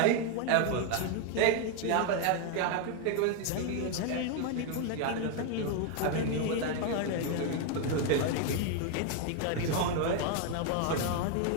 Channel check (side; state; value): both; different; correlation 0.01